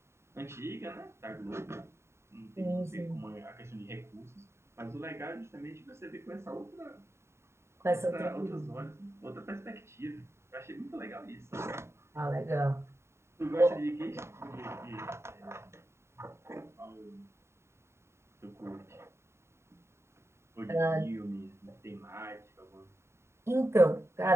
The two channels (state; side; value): late; left; 0.13 ms